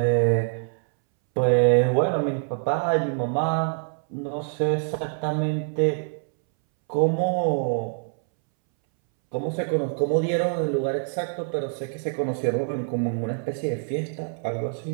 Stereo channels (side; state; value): left; silent; 62 dB below the other